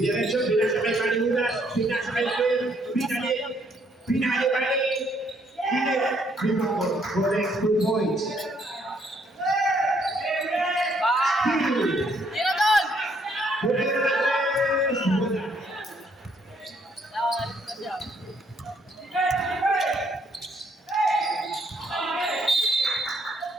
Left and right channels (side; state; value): both; normal; correlation 0.69